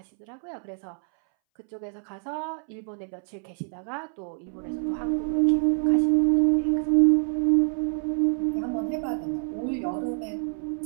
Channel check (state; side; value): silent; left; 60 dB below the other